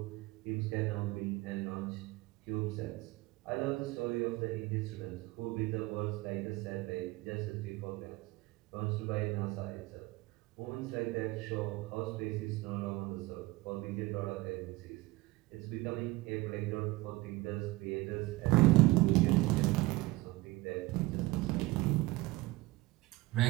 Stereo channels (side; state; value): left; quieter; 20.7 dB